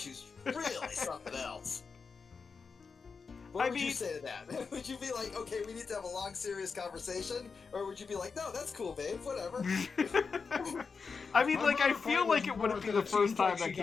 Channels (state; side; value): quieter; right; 5.1 dB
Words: who's really something else. What would you say to that? Would you be like, okay, we need to have a long, serious conversation? Or would you be like, no, that's cool, babe, whatever? I mean, like, I feel like it wouldn't be the first time that